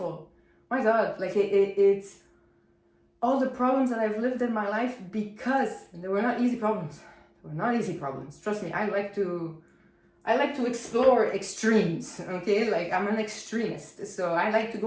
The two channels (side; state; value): both; identical; correlation 1.00